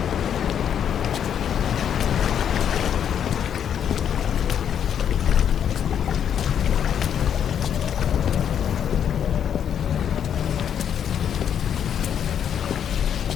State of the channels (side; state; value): right; quieter; 8.8 dB